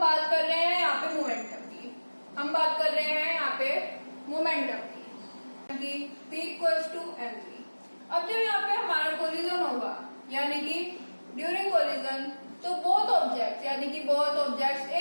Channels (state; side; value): inverted; both; correlation -1.00